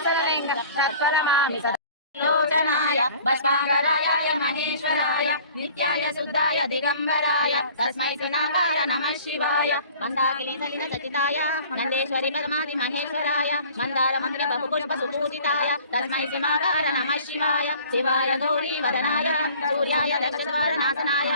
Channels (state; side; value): inverted; both; correlation -0.49